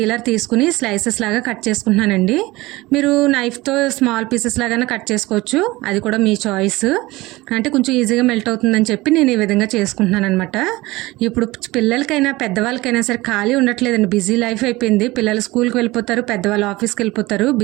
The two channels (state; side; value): quieter; left; 20.3 dB